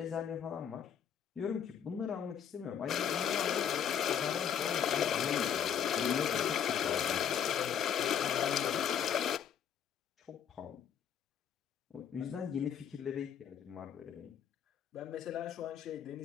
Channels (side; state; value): right; quieter; 8.5 dB